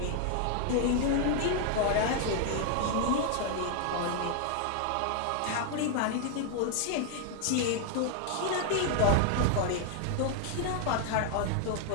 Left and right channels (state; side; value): different; both; correlation 0.00